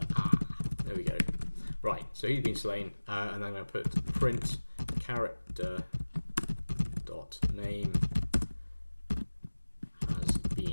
we go. Right, so he's been slain, and then I'm going to put print character dot name has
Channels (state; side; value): inverted; both; correlation -1.00